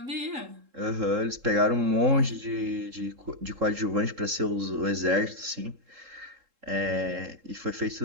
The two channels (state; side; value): late; left; 3.7 ms